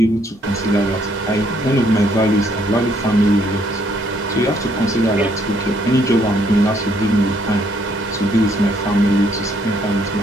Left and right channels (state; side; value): normal; both; correlation 0.68